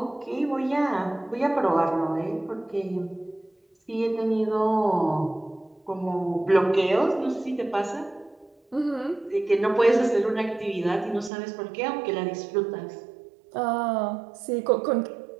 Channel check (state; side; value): drops out; left; at 11.3 s